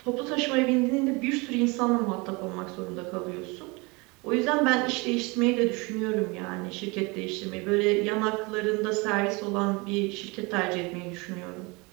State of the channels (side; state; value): left; quieter; 27.0 dB